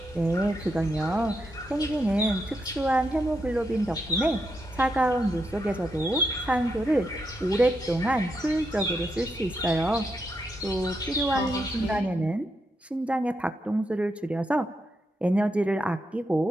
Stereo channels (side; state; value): both; normal; correlation 0.82